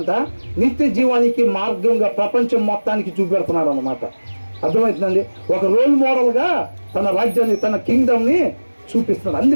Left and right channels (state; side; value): inverted; both; correlation -1.00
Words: నిత్య జీవానికి మార్గంగా ప్రపంచం మొత్తానికి చూపెడుతున్నాడు అన్నమాట. అర్థమవుతుందండి? ఒక రోల్ మోడల్గా తన రాజ్యాన్ని, తన కింగ్డమ్ని చూపిస్తున్నాడు.